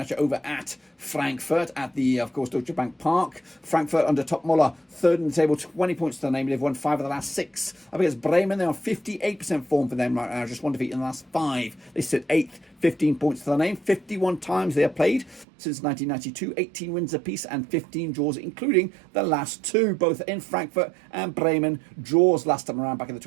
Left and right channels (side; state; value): left; drops out; at 15.5 s